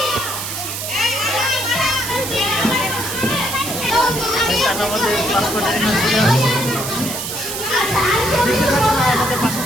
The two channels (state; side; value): noise; right; hiss, 5 dB below the sound